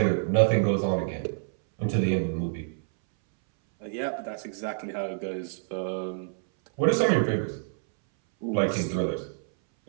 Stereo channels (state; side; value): silent; left; 60 dB below the other